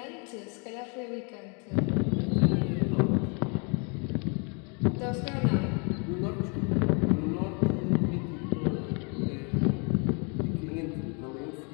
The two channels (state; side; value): quieter; right; 35.0 dB